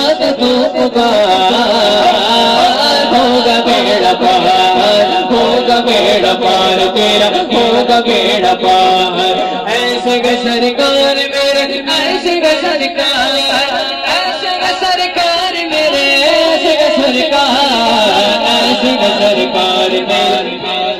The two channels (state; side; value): identical; both; correlation 1.00